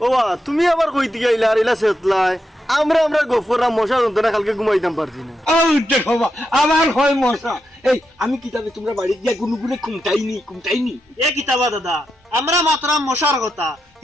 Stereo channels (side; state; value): both; normal; correlation 0.85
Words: ও বা তুমি আবার কইতে গেলা আর ইলা সেতলাই আমরা গফররা মশা যন্ত্রণা কালকে ঘুমাইতাম পারছি না ও দেখো আমার হয় মশা এই আমি কিতাবে তোমরা বাড়ি গিয়া গুনুগুনে কুমটাইনি এ কিতাবা দাদা আমরা মাত্রা মশার কথা